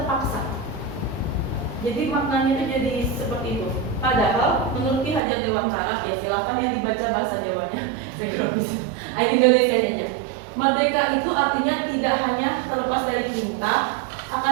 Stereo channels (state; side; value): drops out; left; at 5.2 s